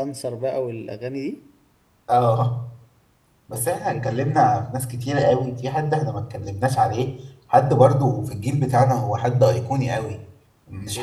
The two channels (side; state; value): both; identical; correlation 1.00